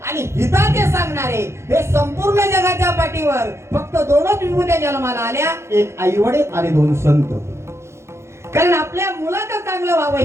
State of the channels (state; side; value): late; left; 0.13 ms